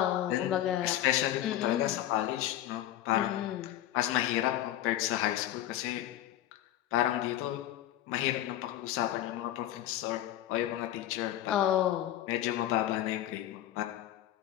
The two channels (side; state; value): right; quieter; 13.1 dB